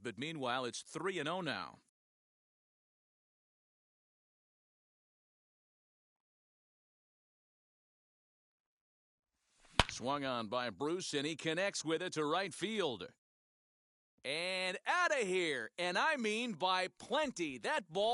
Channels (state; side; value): identical; both; correlation 1.00